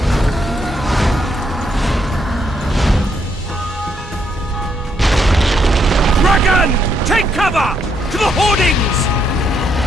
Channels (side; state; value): both; normal; correlation 0.75